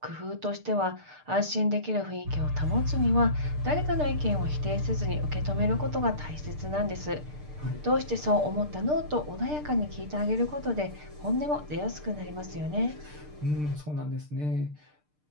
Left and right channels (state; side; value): late; left; 6.7 ms